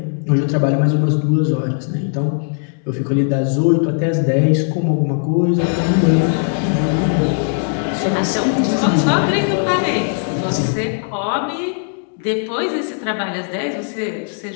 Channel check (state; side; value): silent; right; 61 dB below the other